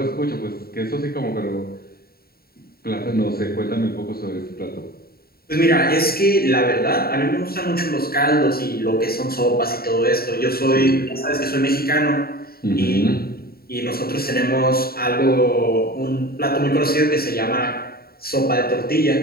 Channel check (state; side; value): late; right; 0.44 ms